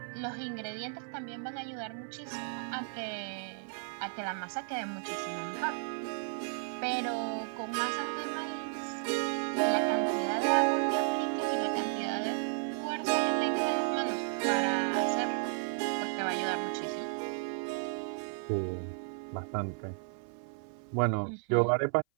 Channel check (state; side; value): silent; left; 55 dB below the other